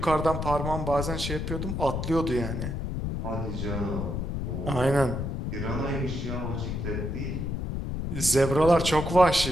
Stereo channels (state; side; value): noise; left; rumble, 3 dB below the sound